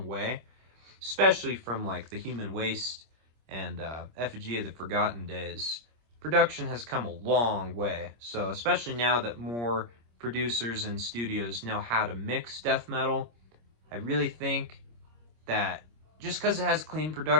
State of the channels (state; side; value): late; left; 26 ms